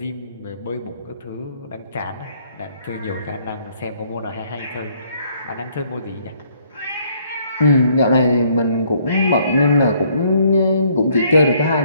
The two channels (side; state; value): both; inverted; correlation -0.65